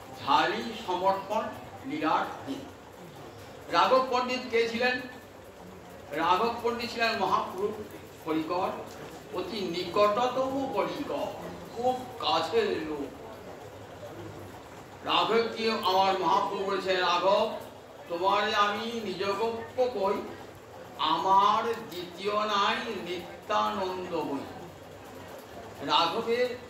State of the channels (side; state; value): both; identical; correlation 1.00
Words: ঝালি সমর্পণ লীলার দিন। রাঘব পণ্ডিত কে ছিলেন? রাঘব পণ্ডিত ছিলেন মহাপুরুষ পরিকর, অতি নিকটতম পরিকর, খুব কাছের লোক। রাঘবকে আমার মহাপ্রভু বলেছেন, রাঘব তোমারে আমি নিজগপ্য কই, আমার দ্বিতীয় নাই নিত্যানন্দ বই। রাঘবের